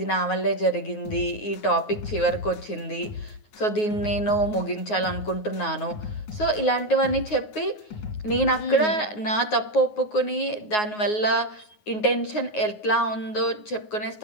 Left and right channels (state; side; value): late; right; 9.5 ms